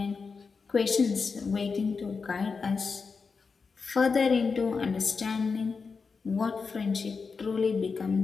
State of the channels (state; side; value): quieter; right; 5.0 dB